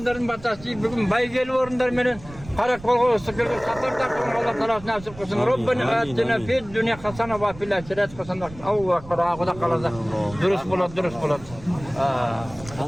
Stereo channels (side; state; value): right; noise; rumble, 17 dB below the sound